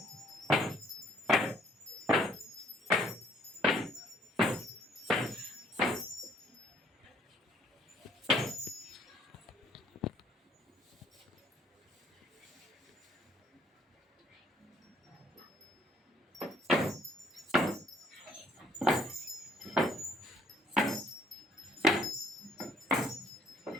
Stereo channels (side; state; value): both; normal; correlation 0.62